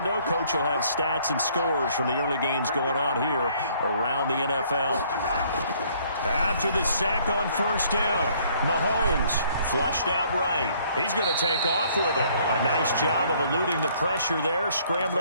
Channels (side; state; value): both; inverted; correlation -0.62